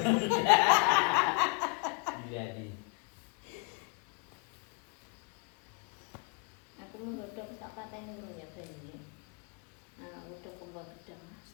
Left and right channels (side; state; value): right; quieter; 33.5 dB